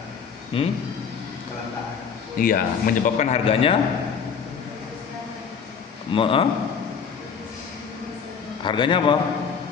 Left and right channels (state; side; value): quieter; right; 6.5 dB